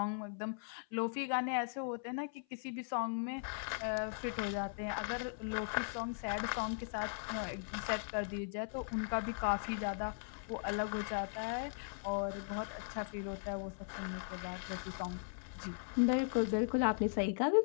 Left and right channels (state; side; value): silent; right; 52 dB below the other